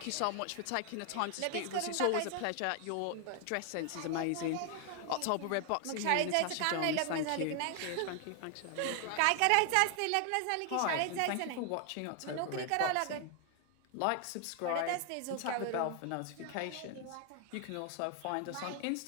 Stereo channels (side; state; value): both; different; correlation 0.00